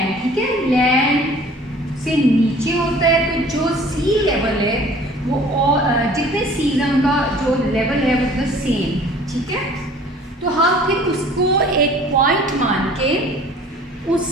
ठीक है, लैंड से नीचे होता है. तो जो सी लेवल है वो जितने सीजन का जो लेवल है वो द सेम. ठीक है, तो हम फिर उसको एक पॉइंट मान के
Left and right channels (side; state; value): both; normal; correlation 0.50